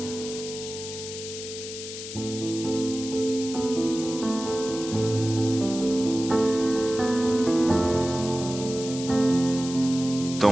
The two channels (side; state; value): left; noise; hiss, 10 dB below the sound